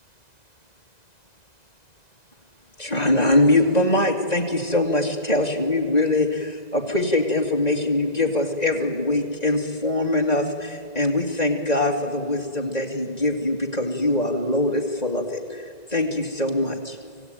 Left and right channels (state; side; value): late; right; 1.9 ms